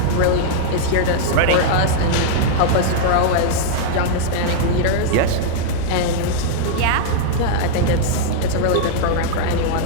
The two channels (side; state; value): both; different; correlation -0.01